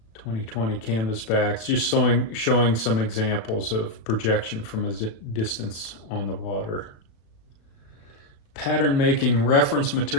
2020 canvasbacks, just showing some examples of projection from a distance on the water. Pattern making reference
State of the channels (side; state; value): right; late; 36 ms